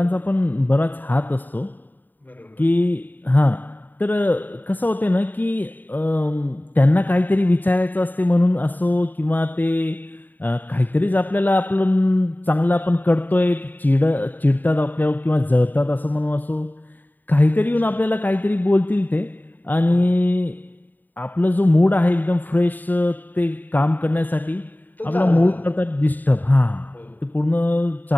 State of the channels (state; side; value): late; right; 0.088 ms